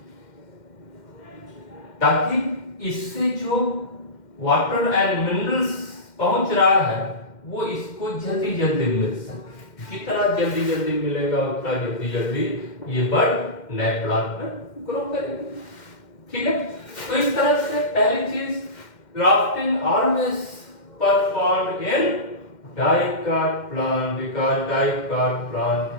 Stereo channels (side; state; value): right; late; 2.1 ms